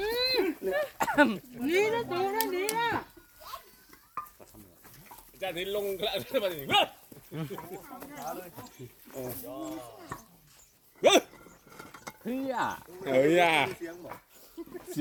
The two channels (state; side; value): identical; both; correlation 1.00